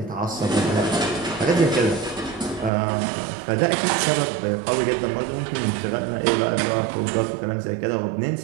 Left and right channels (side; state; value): left; drops out; at 2.7 s